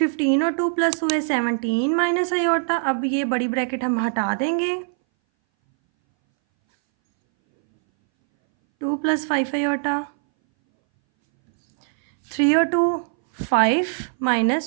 और 2 प्लस हुए 17 माइनस अयोटा। अब ये बड़ी ब्रैकेट हम हटा देंगे, 2 प्लस 5 अयोटा, 3 और 2 5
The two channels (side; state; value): left; silent; 61 dB below the other